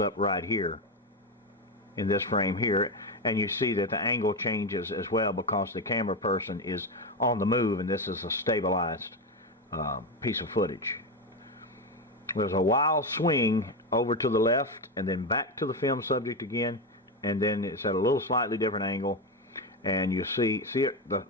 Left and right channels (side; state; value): both; normal; correlation 0.12